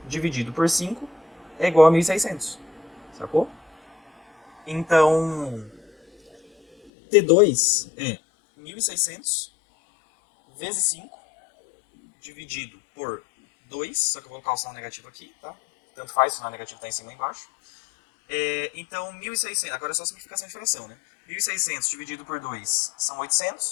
dividido por 5, é igual a 1.600. Sacou? Então, T2 é 1.600 vezes 5, dividido por 2, só que eu vou colocar o sinal negativo aqui, tá? Tanto faz, o sinal negativo está em cima e embaixo. Então, 1.600, agora é só simplificação de fração, né? 1.600 dividido por 2 são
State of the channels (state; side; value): drops out; right; at 6.9 s